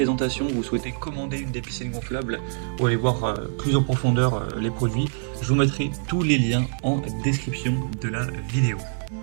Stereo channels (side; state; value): left; silent; 62 dB below the other